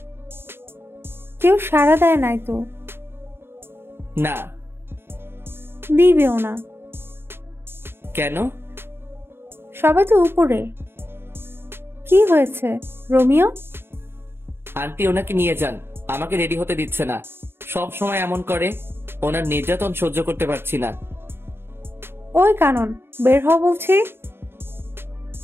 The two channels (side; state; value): left; late; 0.11 ms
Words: কেউ সাড়া দেয় নাই তো। না। দিবেও না। কেন? সবাই তো উপরে। কি হয়েছে রোমিও? আন্টি ওনাকে নিয়ে যান, আমাকে রেডি হতে দিচ্ছে না। সব সময় এমন করে। ওনার নির্যাতন সহ্য করতে পারছি না। ওই কানন, বের হও বলছি।